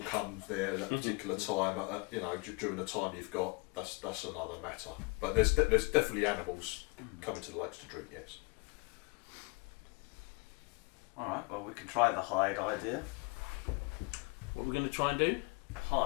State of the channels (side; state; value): right; quieter; 29.3 dB